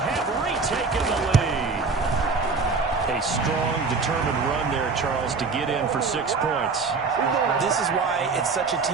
retaken the lead. A strong, determined run there, Charles, to get in for 6 points. This is why it's such a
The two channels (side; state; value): left; quieter; 4.5 dB